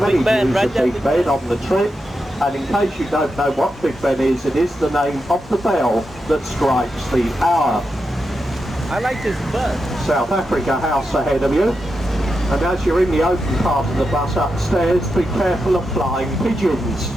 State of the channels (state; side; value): normal; both; correlation 0.87